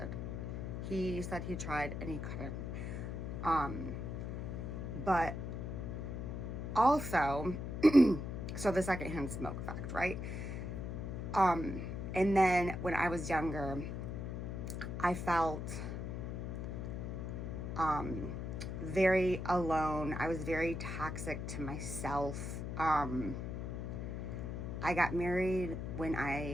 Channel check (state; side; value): noise; left; hum, 4 dB below the sound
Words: He said he tried and he couldn't. But also, so the secondhand smoke effect, right? And then when I was younger, I felt very alone. I was very toxic to myself. I got married when